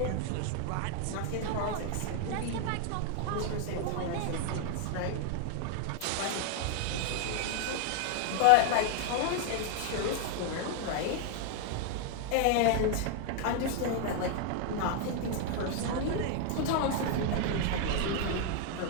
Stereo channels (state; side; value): different; both; correlation 0.00